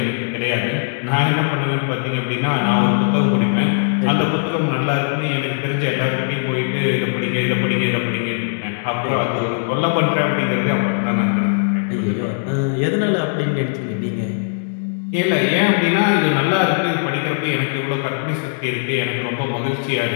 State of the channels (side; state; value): right; silent; digital silence